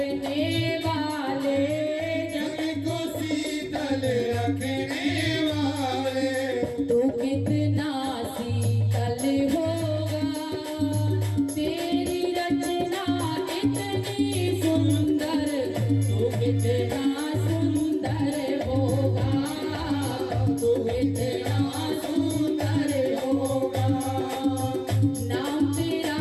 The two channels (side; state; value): both; identical; correlation 1.00